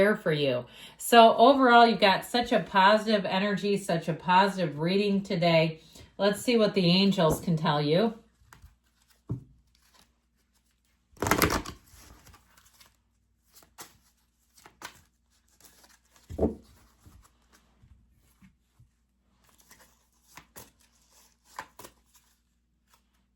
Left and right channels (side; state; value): both; identical; correlation 1.00